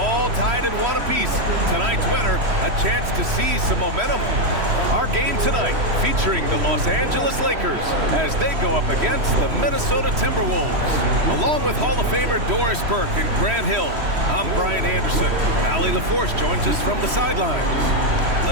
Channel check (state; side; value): late; left; 3.1 ms